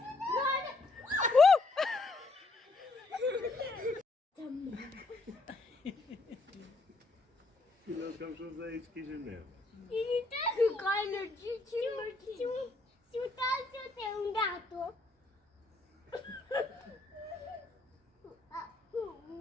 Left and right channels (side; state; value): right; quieter; 3.2 dB